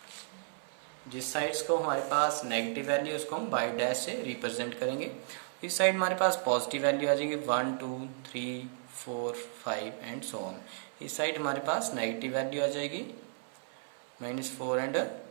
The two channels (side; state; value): left; silent; 55 dB below the other